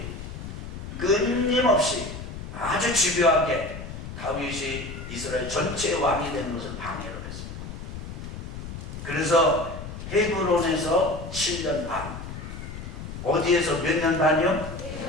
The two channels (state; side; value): noise; left; rumble, 9 dB below the sound